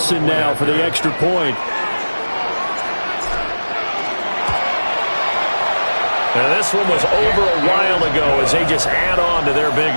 now for the extra point. Now this one was over a while ago as they just add on to their big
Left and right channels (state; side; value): inverted; both; correlation -1.00